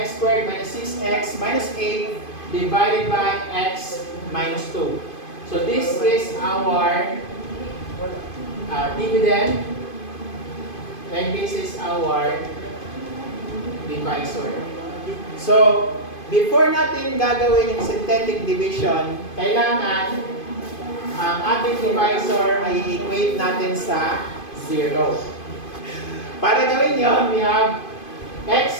squared minus 6x minus 8 divided by x minus 2. So this is our dividend, and this is our divisor. So, before natin gagawin yung synthetic division, kailangan ang ating divisor ay equate natin sa 0. Para gawin yon, we have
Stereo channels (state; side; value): late; right; 2.5 ms